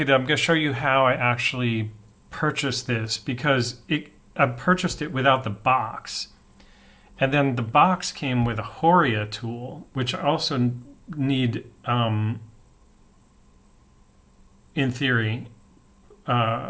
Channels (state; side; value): identical; both; correlation 1.00